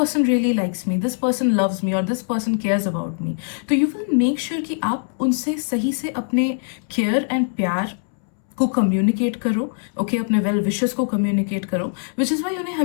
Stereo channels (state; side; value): silent; right; 64 dB below the other